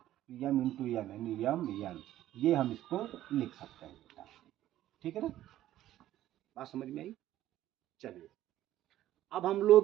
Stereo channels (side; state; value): left; quieter; 13.4 dB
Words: यम इंटू यन, यानी यम यन। ये हम इसको लिख सकते हैं बेटा। ठीक है ना, बात समझ में आई। चलिए अब हम